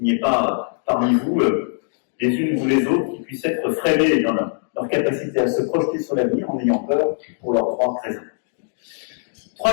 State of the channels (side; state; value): right; silent; digital silence